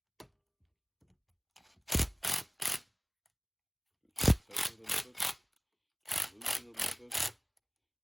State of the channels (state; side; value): identical; both; correlation 1.00